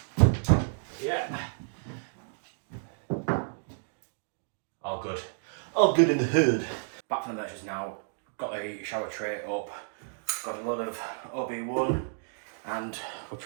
Yeah. All good. All good in the hood. Back from the merchants now. Got the shower tray up. Got a lot of OB1 and we're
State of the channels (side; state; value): left; silent; digital silence